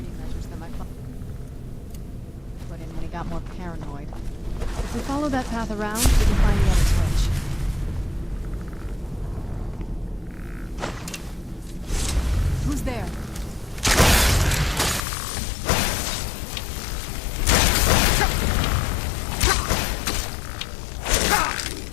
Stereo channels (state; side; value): drops out; right; at 15.1 s